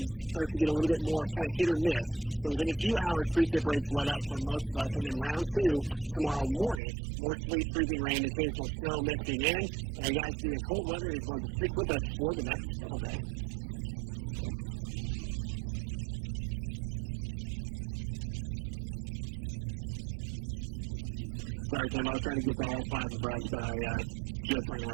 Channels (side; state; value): left; drops out; at 6.8 s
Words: starts to get a little bit more kind of hit or miss. So within a few hours, precip rates let up for most of us. And then round two tomorrow morning, more sleet, freezing rain, occasional snow mixing in. And guys, the cold weather is going to stick with us for the next several days. Sorry, Tim, I was trying to get to all five of us, but I just ran